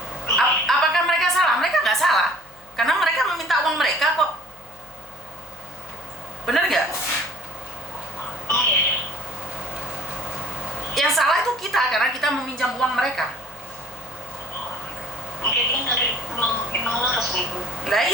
Apakah mereka salah? Mereka nggak salah. Karena mereka meminta uang mereka kok. Bener nggak? Yang salah itu kita, karena kita meminjam uang mereka. Mungkin dari emang laras itu. Nah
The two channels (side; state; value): left; noise; hum, 28 dB below the sound